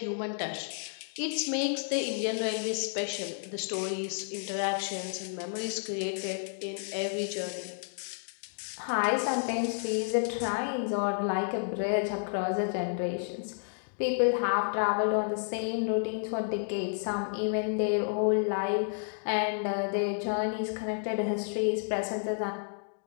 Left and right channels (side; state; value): right; silent; digital silence